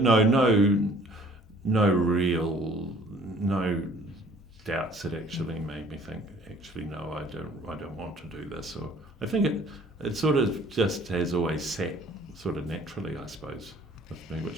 no doubts that actually made me think, actually, no, I don't want to do this. Or I think it sort of just has always sat sort of naturally, I suppose, with me,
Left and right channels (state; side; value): normal; both; correlation 0.54